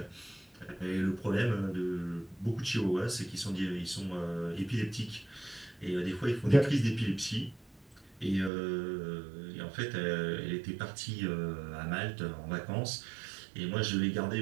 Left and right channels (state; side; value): drops out; left; at 8.5 s